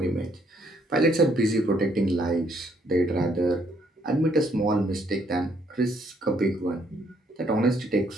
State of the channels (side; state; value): both; normal; correlation 0.69